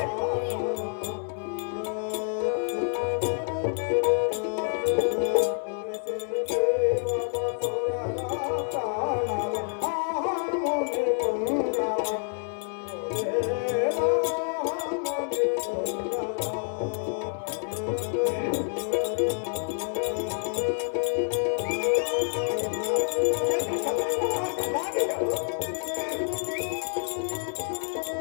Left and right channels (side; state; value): right; silent; 59 dB below the other